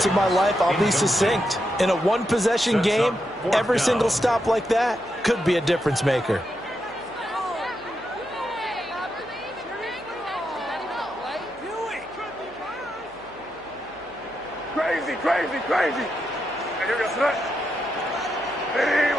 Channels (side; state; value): left; noise; hum, 28 dB below the sound